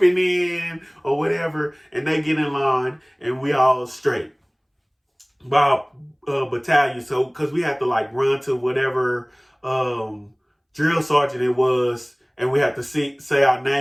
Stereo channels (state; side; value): identical; both; correlation 1.00